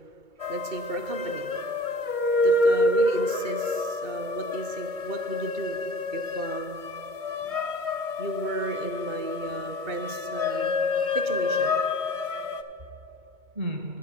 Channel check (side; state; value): left; late; 2.2 ms